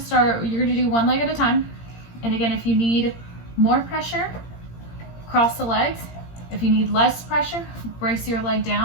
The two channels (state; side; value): late; right; 17 ms